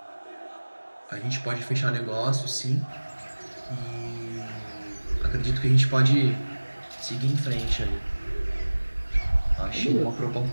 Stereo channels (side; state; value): both; inverted; correlation -1.00